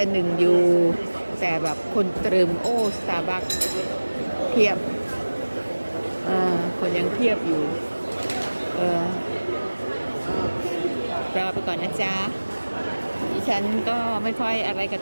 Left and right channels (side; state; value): both; inverted; correlation -1.00